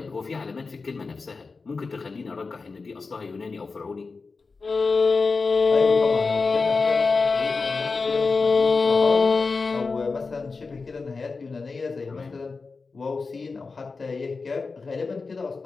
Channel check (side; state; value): right; quieter; 4.3 dB